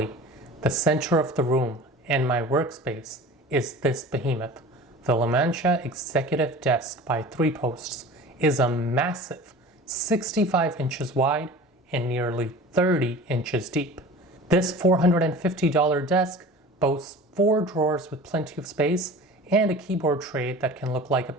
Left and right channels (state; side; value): normal; both; correlation 0.39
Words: the center of the room and my workspace is this behemoth. The Lamantia Executive Desk by 3 Posts is a massive 65 inches wide and nearly 30 inches deep. This $450 desk boasts 4 drawers with plenty of space and a keyboard tray that can look like a